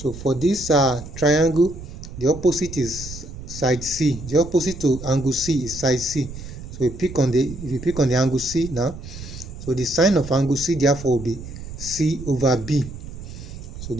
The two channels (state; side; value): noise; right; rumble, 12 dB below the sound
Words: for this triangle, the opposite is side C. The opposite to angle C is side C. So if you pick on the angle C now, so the sine of angle C therefore will be C over B. So